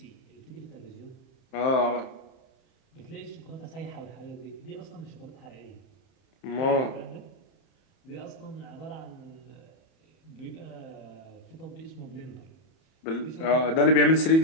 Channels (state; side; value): late; right; 31 ms